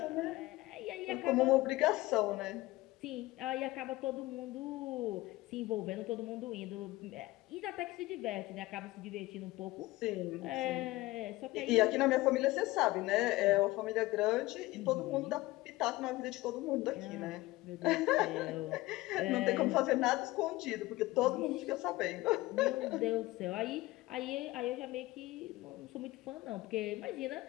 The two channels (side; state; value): right; quieter; 19.1 dB